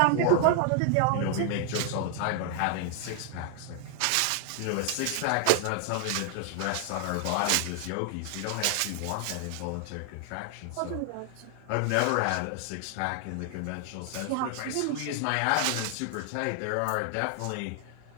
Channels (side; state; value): both; different; correlation 0.00